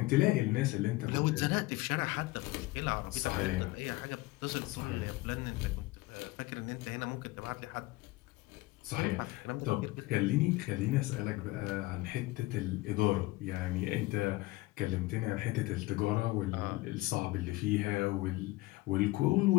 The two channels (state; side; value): quieter; right; 20.2 dB